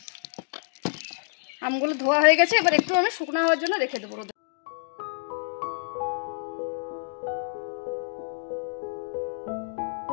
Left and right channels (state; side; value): silent; right; digital silence